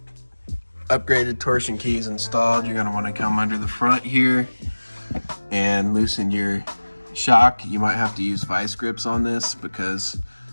upgraded torsion keys installed, you're going to want to come under the front here and loosen your shock. You might have to use vice grips on this because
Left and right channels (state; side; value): inverted; both; correlation -1.00